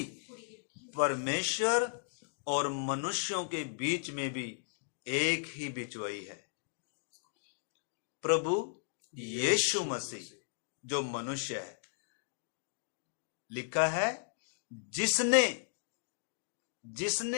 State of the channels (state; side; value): silent; right; digital silence